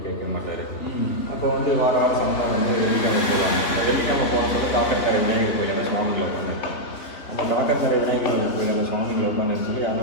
கேட்க மாட்டார். அப்போ வந்து வாரம் சந்தா வந்து வெள்ளிக்கிழமை போவாங்க. வெள்ளிக்கிழமை போகிறதுக்கு காக்கத்தரை விநாயகர் கோயிலில் சுவாமிகளை உட்காந்துருக்காங்க. அந்த காக்கத்தரை விநாயகர் கோயிலில் சுவாமிகளை உட்காந்து சொல்லி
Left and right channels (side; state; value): right; late; 3.5 ms